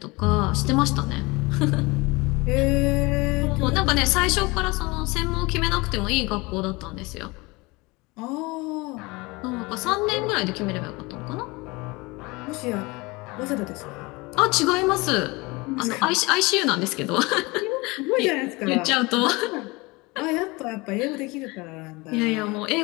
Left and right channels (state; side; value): quieter; right; 24.4 dB